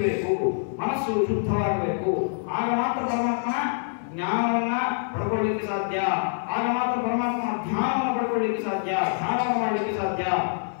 ಬೇಕು, ಮನಸ್ಸು ಶುದ್ಧವಾಗಬೇಕು. ಆಗ ಮಾತ್ರ ಪರಮಾತ್ಮನ ಜ್ಞಾನವನ್ನ ಪಡ್ಕೊಳ್ಳಿಕ್ಕೆ ಸಾಧ್ಯ. ಆಗ ಮಾತ್ರ ಪರಮಾತ್ಮನ ಧ್ಯಾನವನ್ನು ಪಡ್ಕೊಳ್ಳಿಕ್ಕೆ ಸಾಧ್ಯ, ಧ್ಯಾನವನ್ನು ಮಾಡಲಿಕ್ಕೆ ಸಾಧ್ಯ.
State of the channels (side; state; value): right; silent; 57 dB below the other